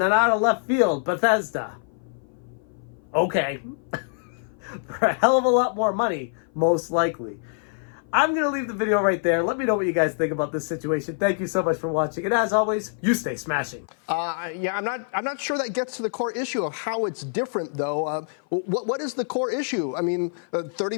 then out of left field, Bethesda. Okay. For a hell of a lot more money, most likely. I'm going to leave the video right there. Let me know what you guys think about this situation. Thank you so much for watching. And as always, you stay smashing. Yeah, I'm not sure that gets to the core issue of how it's different, though. What is the core issue? I mean,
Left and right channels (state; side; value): silent; right; 57 dB below the other